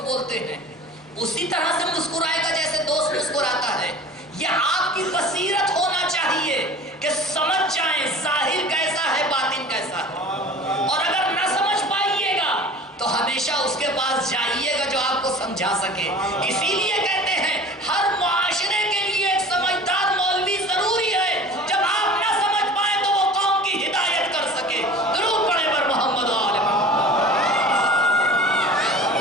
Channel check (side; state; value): both; normal; correlation 0.41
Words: بولتے ہیں، اسی طرح سے مسکرائے گا جیسے دوست مسکراتا ہے۔ یہ آپ کی بصیرت ہونا چاہیے کہ سمجھ جائیں ظاہر کیسا ہے باطن کیسا ہے، اور اگر نہ سمجھ پائیے گا تو ہمیشہ اس کے پاس جائیے گا جو آپ کو سمجھا سکے۔ اسی لیے کہتے ہیں ہر معاشرے کے لیے ایک سمجھدار مولوی ضروری ہے، جب آپ نہ سمجھ پائیں تو وہ قوم کی ہدایت کر سکے۔ درود پڑھیں بر محمد و آل محمد۔